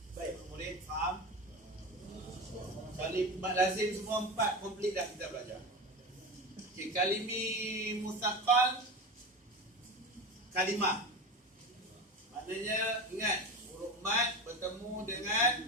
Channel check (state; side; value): normal; both; correlation 0.25